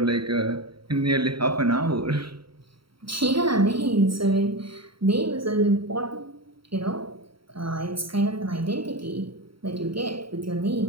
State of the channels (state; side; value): late; left; 0.74 ms